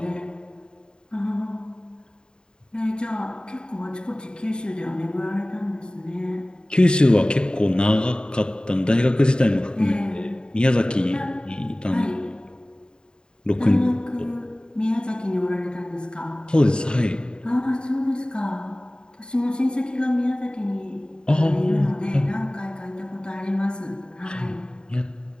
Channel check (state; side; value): late; right; 0.048 ms